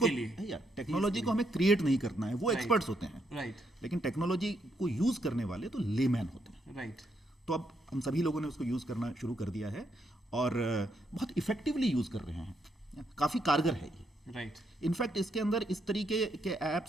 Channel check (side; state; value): both; normal; correlation 0.77